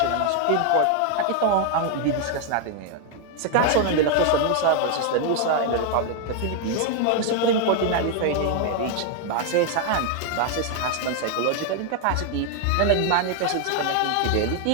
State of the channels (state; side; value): different; both; correlation 0.00